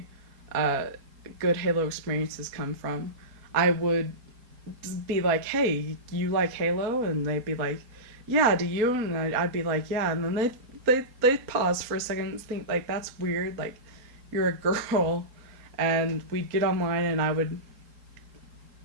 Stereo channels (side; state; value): left; late; 4.3 ms